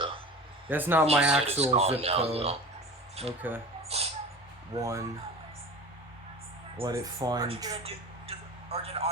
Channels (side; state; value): both; normal; correlation 0.36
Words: That's not my He said actual it's zip gone code. now, Okay. 1. Let it find. Or did it